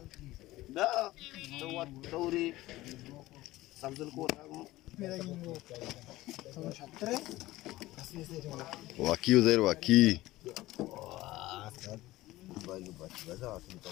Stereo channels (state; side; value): quieter; right; 17.4 dB